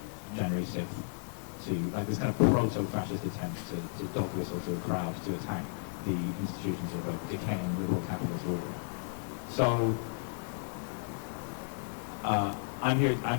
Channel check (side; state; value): right; silent; digital silence